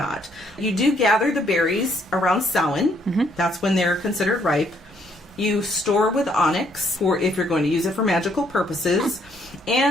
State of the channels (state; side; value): normal; both; correlation 0.69